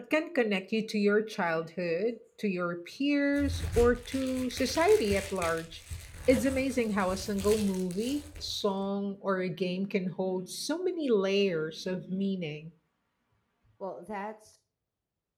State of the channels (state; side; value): identical; both; correlation 1.00